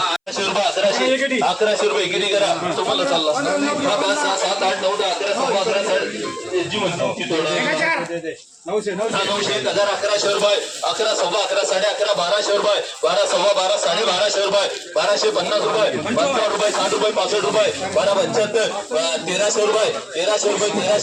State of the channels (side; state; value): both; identical; correlation 1.00